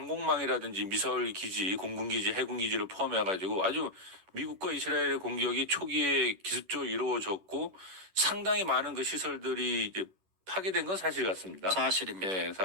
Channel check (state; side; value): late; left; 11 ms